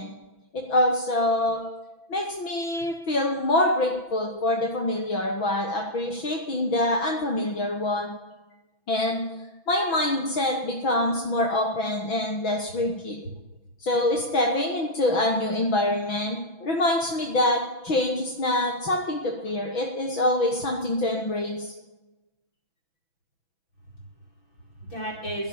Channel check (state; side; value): late; right; 6.1 ms